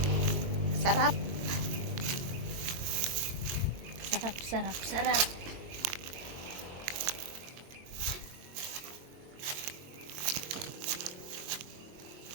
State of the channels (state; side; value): late; left; 22 ms